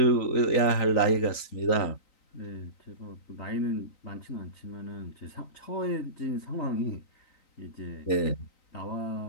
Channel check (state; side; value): late; right; 3.9 ms